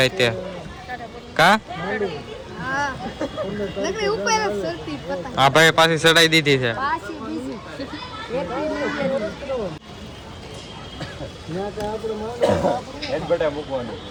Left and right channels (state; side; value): identical; both; correlation 1.00